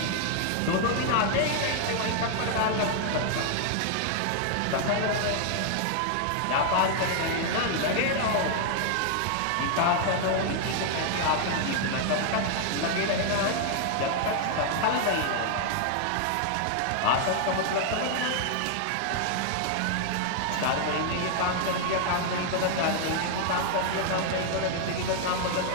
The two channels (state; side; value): different; both; correlation 0.00